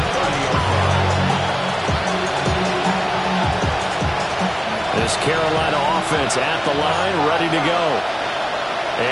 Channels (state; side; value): identical; both; correlation 1.00